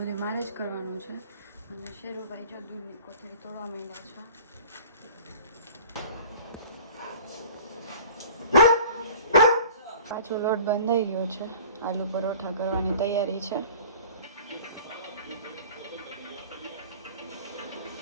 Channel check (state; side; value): inverted; both; correlation -0.46